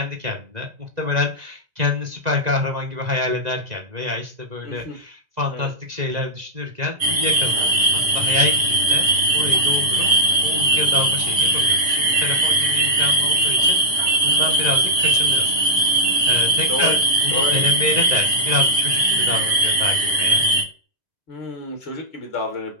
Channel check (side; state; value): left; late; 2.0 ms